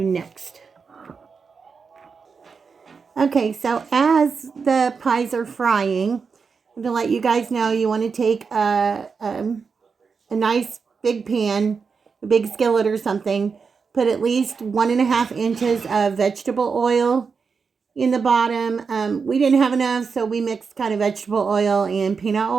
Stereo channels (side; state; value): left; quieter; 5.4 dB